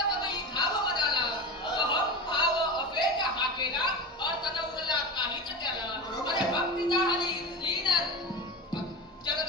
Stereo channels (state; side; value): normal; both; correlation 0.25